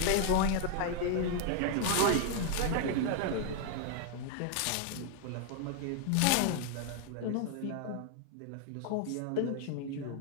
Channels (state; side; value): different; both; correlation 0.00